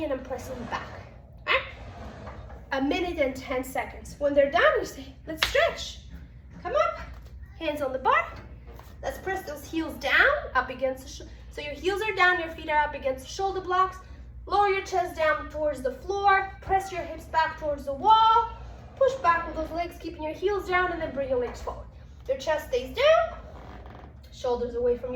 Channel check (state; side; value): identical; both; correlation 1.00